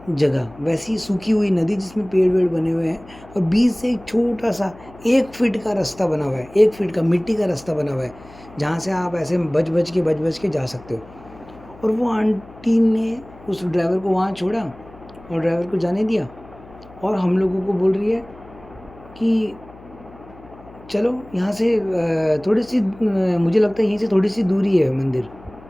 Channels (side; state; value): left; noise; hum, 21 dB below the sound